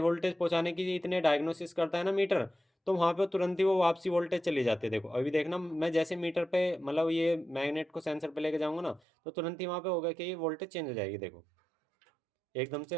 वोल्टेज पहुँचाने की इतने डायग्नोसिस करता है ना मीटर, तो वहाँ पे तुरंत ही वो वापसी वोल्टेज चली जाती है। देखो अभी देखना, मैं जैसे मीटर पे मतलब ये मैग्नेट को सेंसर पे लेके जाऊंगा ना, तो तुरंत ही वहाँ पे होगा कि ये वोल्टेज चेंज हो जाएगी। देखो एकदम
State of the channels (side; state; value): left; drops out; at 9.0 s